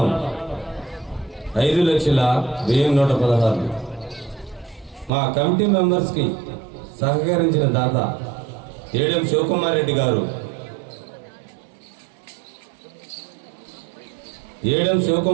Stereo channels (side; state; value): left; drops out; at 5.1 s